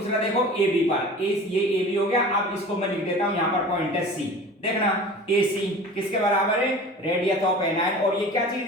देखो ए बी पर, ये ए बी हो गया। अब इसको मैं लिख देता हूं यहां पर पॉइंट है सी, देखना AC किसके बराबर है रेडियस ऑफ एनायन, और ये क्या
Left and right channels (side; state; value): both; normal; correlation 0.39